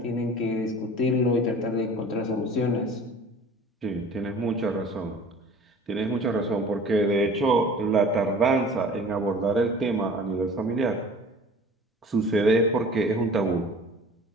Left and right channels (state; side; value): normal; both; correlation 0.45